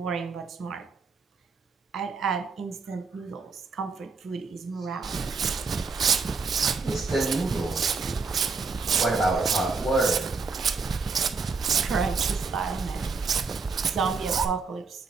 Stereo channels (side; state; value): left; quieter; 4.6 dB